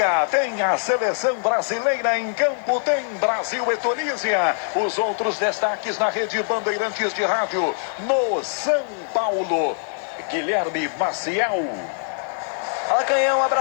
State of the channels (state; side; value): silent; right; digital silence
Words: Tem a seleção brasileira em campo, tem Brasil e Tunísia. Os outros destaques na rede Bandeirantes de Rádio no São Paulo. Guilherme Maciel. Fala, Canhão, um